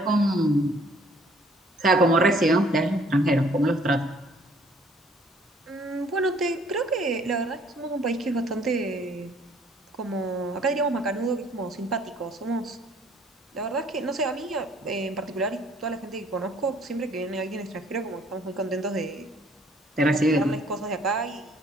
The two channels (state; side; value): normal; both; correlation 0.59